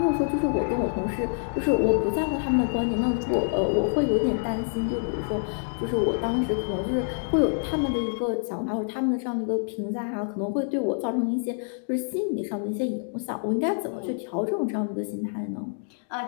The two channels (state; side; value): silent; right; digital silence